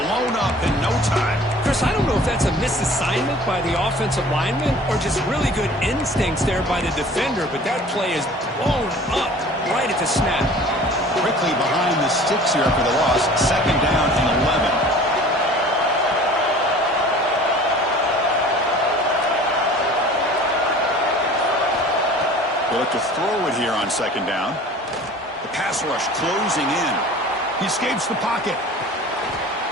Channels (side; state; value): both; normal; correlation 0.46